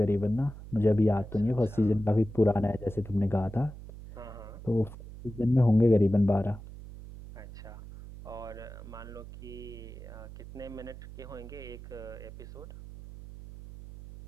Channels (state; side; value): noise; right; hum, 14 dB below the sound